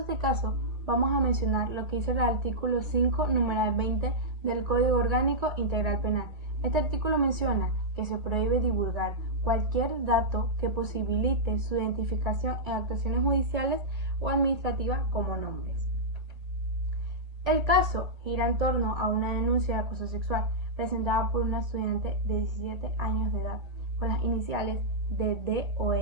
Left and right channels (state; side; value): late; left; 1.8 ms